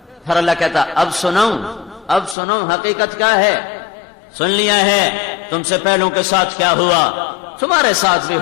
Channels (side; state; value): right; drops out; at 2.4 s